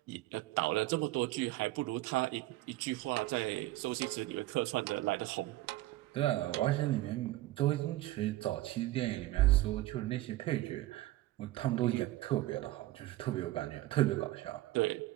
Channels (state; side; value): quieter; left; 16.9 dB